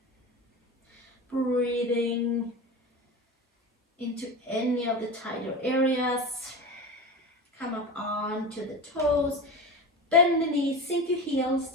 Breathing into any of the tighter areas. Come up onto the toes. Bend the knees, sink your heels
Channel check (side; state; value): both; normal; correlation 0.27